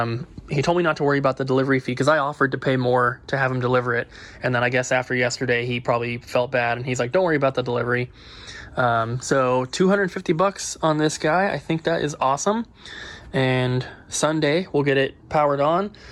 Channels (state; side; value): identical; both; correlation 1.00